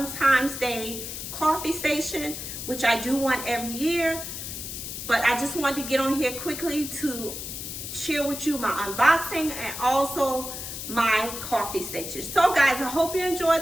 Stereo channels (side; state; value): left; noise; hiss, 7 dB below the sound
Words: Day coffee station, which I do one every year. But I just wanted to get on here quickly to share with you my unboxing and also my coffee station. So guys, I hope you